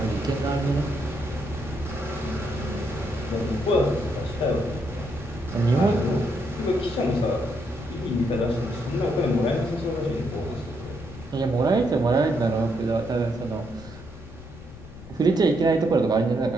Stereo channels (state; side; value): noise; left; rumble, 16 dB below the sound